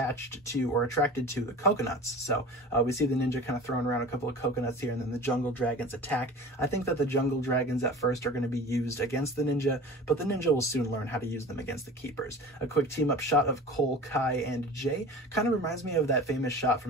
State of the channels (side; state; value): both; normal; correlation 0.38